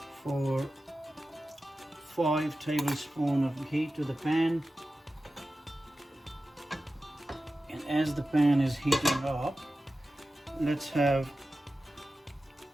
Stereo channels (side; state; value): both; normal; correlation 0.94